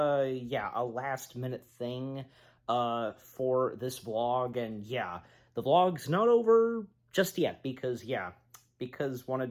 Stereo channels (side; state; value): both; identical; correlation 1.00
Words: a last-minute thing, for this vlog, and yeah, the vlog's not over just yet, because